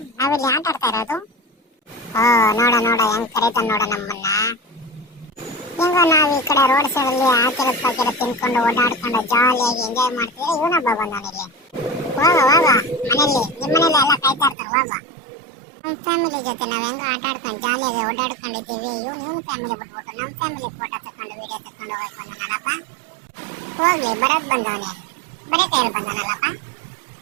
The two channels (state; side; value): drops out; left; at 14.6 s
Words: ನಾವಿಲ್ಲಿ ಆಟ ಆಡ್ತಾ ಇರೋದು. ಓ ನೋಡ ನೋಡ ಹೆಂಗ್ ಕರೀತಾನ ನೋಡ ನಮ್ಮನ್ನ. ಹೆಂಗೋ ನಾವು ಈ ಕಡೆ ರೋಡ್ ಸೈಡ್ ಅಲ್ಲಿ ಹಾಕಿರೋದು ಪಾಕಿರೋದು ತಿನ್ಕೊಂಡು ಓಡಾಡ್ಕೊಂಡು ಜಾಲಿಯಾಗಿ ಎಂಜಾಯ್ ಮಾಡ್ತಿದ್ರೆ ಇವನೊಬ್ಬ ಬಂದವನಿಲ್ಲಿ. ಹೋಗ ಹೋಗ ಮನೇಲಿ, ನಿಮ್ಮ ಮನೇಲಿ ಎಲ್ಲ ಕಾಯ್ತಾ ಇರ್ತಾರೆ. ಹೋಗ ನಮ್ಮ ಫ್ಯಾಮಿಲಿ ಜೊತೆ ನಾವು ಹೆಂಗ ಆಟ ಆಡ್ಕೊಂಡು ಜಾಲಿಯಾಗಿ ಓಡಾಡ್ಕೊಂಡಿದ್ದೀವಿ. ಇವನು ಫ್ಯಾಮಿಲಿ ಬಿಟ್ಬಿಟ್ಟು ನಮ್ಮ ಫ್ಯಾಮಿಲಿ ಫೋಟೋ ತಕೊಂಡು ವಿಡಿಯೋ ತಕೊಂಡು ಹೋಗಕ್ ಬಂದನಲ್ಲಪ್ಪ. ಹೋಗ್ಲಿ ಬರೋದ್ ಬಂದವನೇ, ಬರೀ ಕೈಯಲ್ಲಿ ಬಂದನಲ್ಲಪ್ಪ.